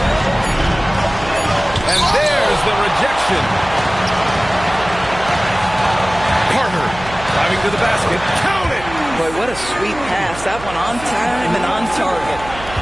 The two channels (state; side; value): noise; right; hum, 14 dB below the sound